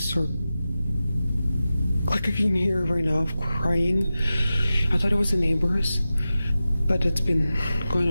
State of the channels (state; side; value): inverted; both; correlation -0.94